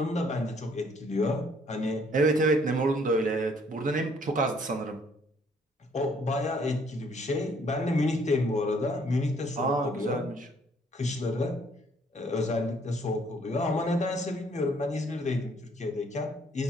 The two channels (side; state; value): both; normal; correlation 0.63